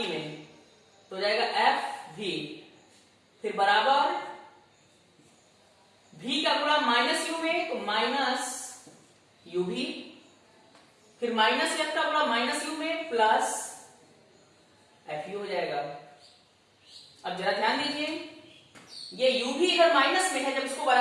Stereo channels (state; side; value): identical; both; correlation 1.00